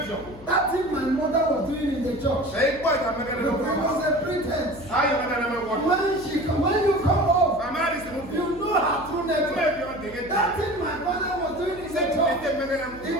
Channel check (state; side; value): noise; left; hum, 18 dB below the sound